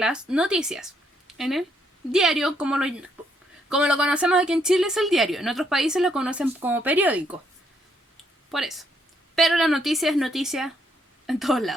noticias. En el diario, como lo conocemos aquí en Chile, es el diario. En otros países lo conocen como periódico. Por eso. Pero la noticia es noticia en todos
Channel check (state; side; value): normal; both; correlation 0.73